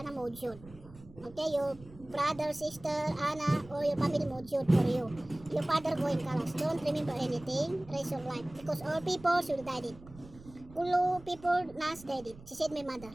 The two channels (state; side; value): noise; right; rumble, 20 dB below the sound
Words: mojud. Okay, your brother, sister, Anna, or your family mojud for you. Your father going kalas. Don't remember anything. Raise your life, because all people should die it. Kulo people nas died it. She said my mother.